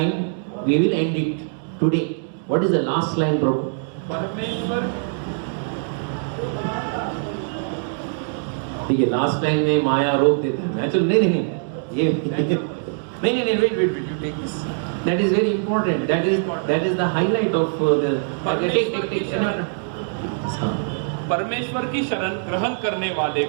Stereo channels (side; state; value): left; silent; digital silence